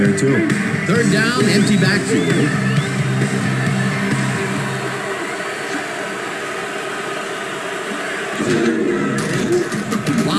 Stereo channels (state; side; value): identical; both; correlation 1.00